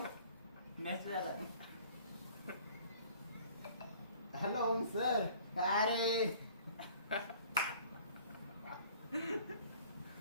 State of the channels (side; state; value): both; inverted; correlation -0.52